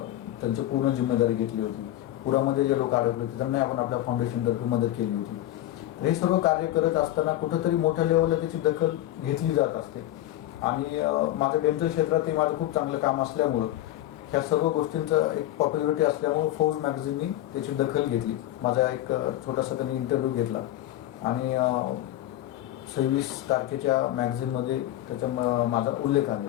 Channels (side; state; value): right; quieter; 14.1 dB